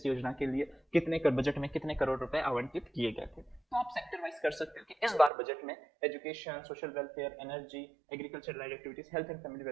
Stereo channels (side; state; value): left; drops out; at 5.3 s